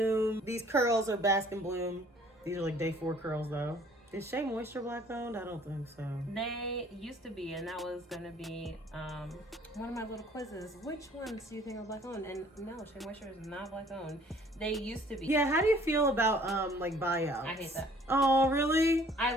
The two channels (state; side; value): normal; both; correlation 0.56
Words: These curls are Bask and Bloom. These are like day 4 curls though. Is Shea Moisture Black owned? I don't think so. They used to be, and that was going to be one of my little quizzes. Which ones do you think are Black owned? And no, Shea Moisture is not Black owned. They used to be. Yeah, how do you feel about like buyouts? I hate that. Oh, really?